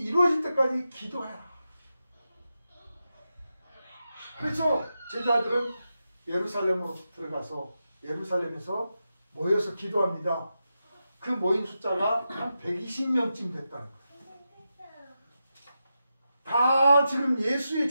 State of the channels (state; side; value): inverted; both; correlation -0.89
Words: 때까지 기도해라. 그래서 제자들은 예루살렘으로 들어가서 예루살렘에서 모여서 기도합니다. 그 모인 숫자가 한 120명쯤 됐다는 거예요. 다 지금 예수의